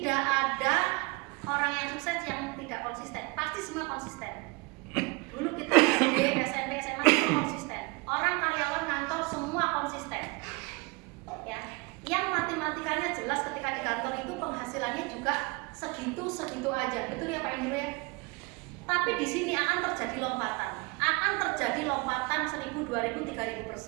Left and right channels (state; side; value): quieter; left; 27.9 dB